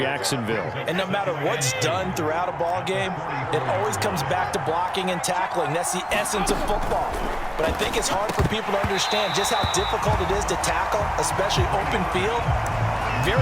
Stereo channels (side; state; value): both; identical; correlation 1.00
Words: And no matter what's done throughout a ball game, it always comes back to blocking and tackling. That's the essence of football. But I think it's hard for people to understand just how difficult it is to tackle, especially open field.